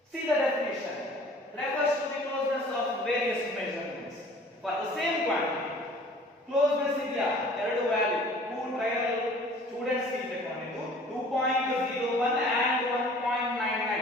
See the definition refers to the closeness of various measurements for the same quantity. Closeness idea ಎರಡು value two trial students C ತಗೊಂಡಿದ್ದು 2.01 and 1.99.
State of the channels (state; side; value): normal; both; correlation 0.49